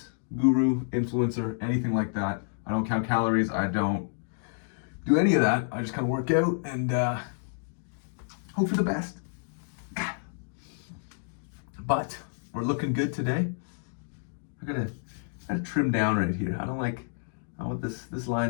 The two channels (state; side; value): silent; right; digital silence